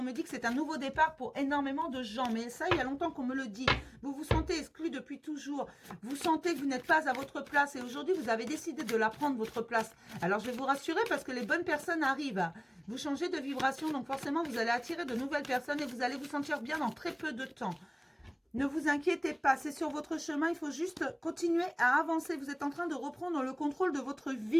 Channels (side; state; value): both; identical; correlation 1.00